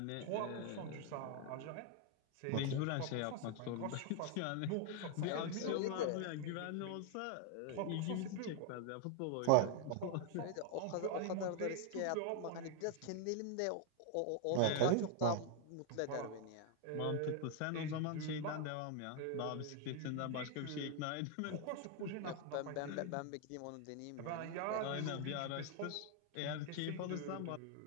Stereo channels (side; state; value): both; different; correlation 0.00